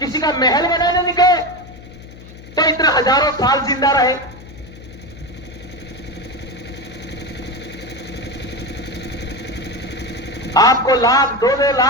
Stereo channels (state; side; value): noise; left; hum, 17 dB below the sound